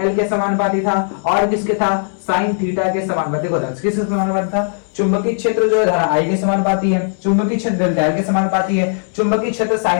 के समानुपाती था, और किसके था साइन थीटा के समानुपाती। किसके समानुपाती था, चुंबकीय क्षेत्र जो है धारा आई के समानुपाती है, चुंबकीय क्षेत्र डेल्टा एल के समानुपाती है, चुंबकीय क्षेत्र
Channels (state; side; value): silent; right; digital silence